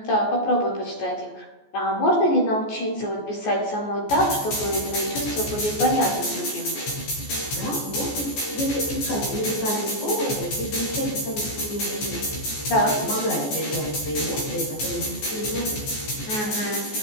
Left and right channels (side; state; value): right; late; 14 ms